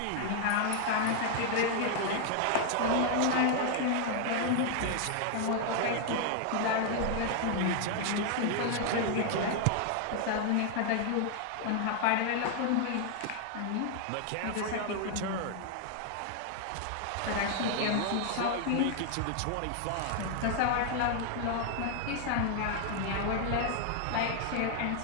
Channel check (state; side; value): different; both; correlation 0.00